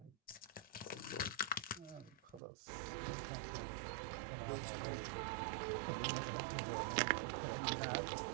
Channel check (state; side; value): drops out; left; at 2.4 s